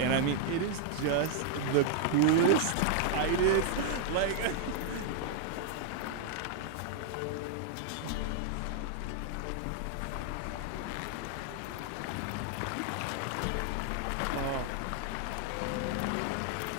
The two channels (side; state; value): both; different; correlation 0.00